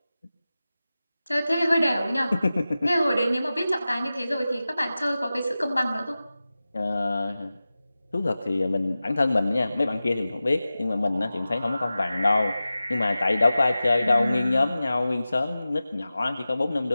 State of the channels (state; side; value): inverted; both; correlation -0.95